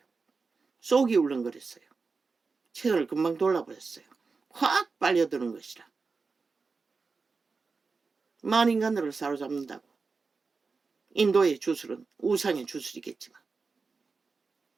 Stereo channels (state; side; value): quieter; left; 4.5 dB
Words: 속이 울렁거렸어요. 채널을 금방 돌아버렸어요. 확 빨려드는 것이라. 만인간들을 사로잡는다고. 인도의 주술은 우상의 주술이겠지만.